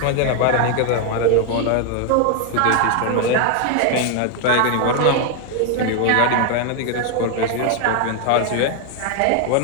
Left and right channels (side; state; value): both; different; correlation 0.00